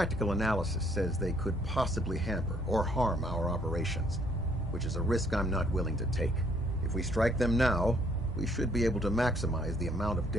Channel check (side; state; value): both; normal; correlation 0.65